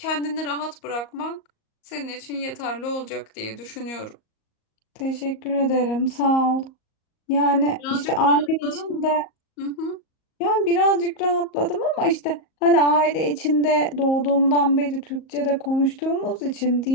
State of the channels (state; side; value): late; right; 38 ms